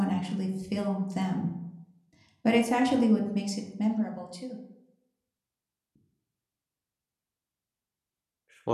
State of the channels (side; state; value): both; identical; correlation 1.00